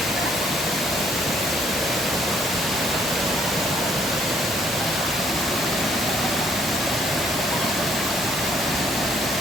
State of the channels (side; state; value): both; normal; correlation 0.65